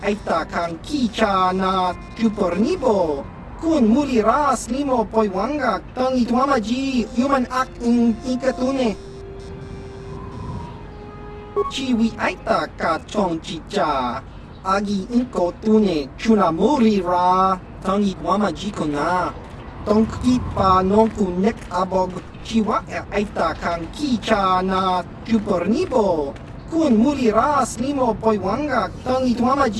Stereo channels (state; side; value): identical; both; correlation 1.00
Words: aita kan kicha na chupornibo. Kun muri ra slimo poiwanga. Tangi wama ji human act in ikatune. Chiwi aita ka chong chicha. Agi inko tune chunamuri ra. Tangi wama jikona. Tonki pa nonku nek abog. Chiwa aita kan kicha na chupornibo. Kun muri ra slimo poiwanga. Tangi wama